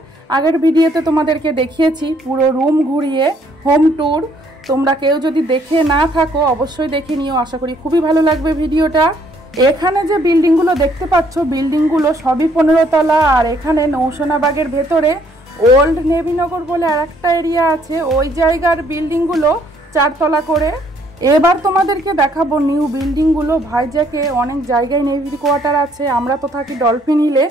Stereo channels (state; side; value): normal; both; correlation 0.66